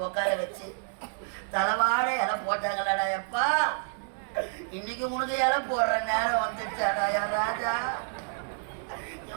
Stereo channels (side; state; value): left; silent; digital silence